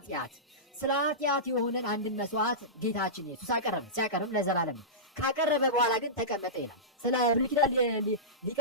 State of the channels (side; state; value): both; normal; correlation -0.18